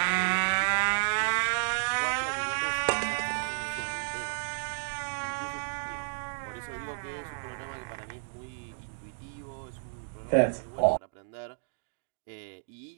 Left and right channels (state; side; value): silent; left; digital silence